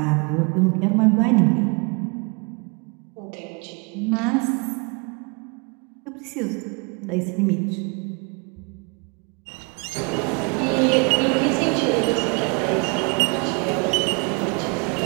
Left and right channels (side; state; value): left; quieter; 32.7 dB